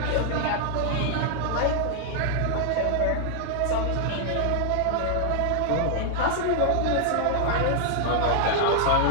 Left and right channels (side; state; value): both; different; correlation 0.00